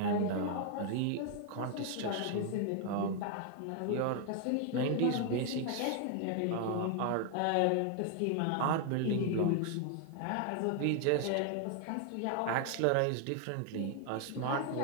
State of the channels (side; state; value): both; different; correlation 0.00